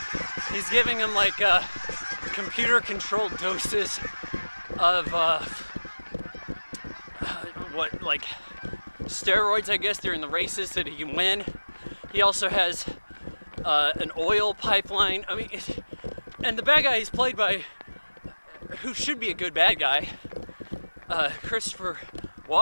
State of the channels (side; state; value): both; inverted; correlation -1.00